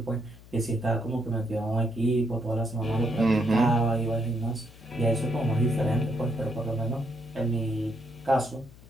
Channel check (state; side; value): noise; left; hum, 21 dB below the sound